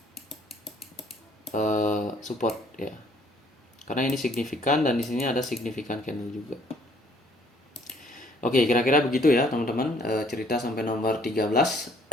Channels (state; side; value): normal; both; correlation 0.61